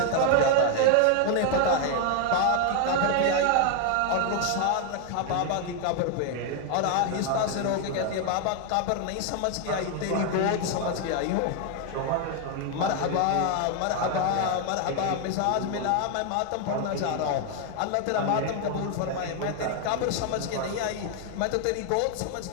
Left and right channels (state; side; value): different; both; correlation 0.00